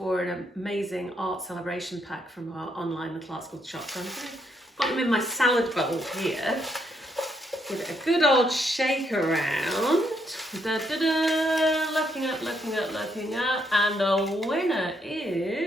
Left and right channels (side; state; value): both; normal; correlation 0.76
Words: an amazing art celebration pack from our online Little Art School shop. So I'm going to put them in my salad bowl here. Give it a good old shake around. Da, da, da. Looking up, looking up, looking up. And the winner